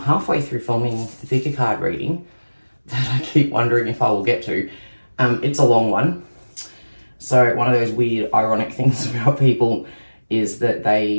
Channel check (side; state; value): both; inverted; correlation -1.00